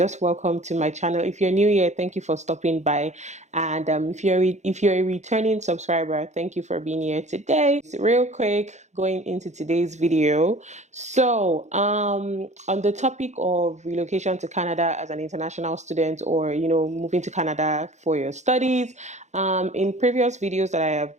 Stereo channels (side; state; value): left; late; 0.33 ms